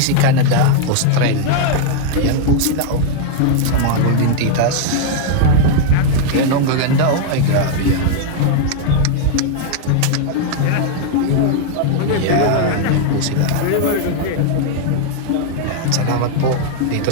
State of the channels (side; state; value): both; different; correlation 0.00